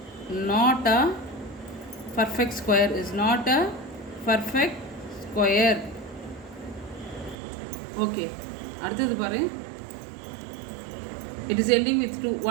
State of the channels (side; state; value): left; drops out; at 7.4 s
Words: not a perfect square, is not a perfect square. Okay, அடுத்தது பாரு. It is ending with 2.